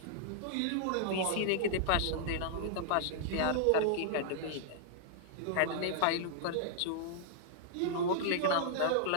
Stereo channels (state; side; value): different; both; correlation -0.01